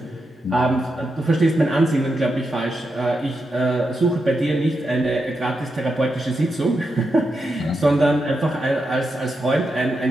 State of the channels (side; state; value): both; normal; correlation 0.86